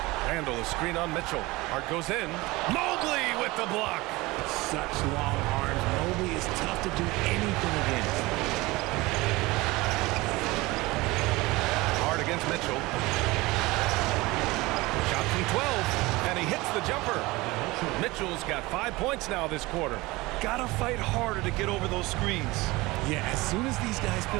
Randle, a screen on Mitchell. Hart goes in. Mobley with the block. Such long arms. Mobley is tough to do anything against. Hart against Mitchell. Shot from 12, and he hits the jumper. Mitchell's got 5 points now this quarter. Gotta fight harder to get over those screens. Yeah, as soon as these guys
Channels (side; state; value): left; quieter; 21.5 dB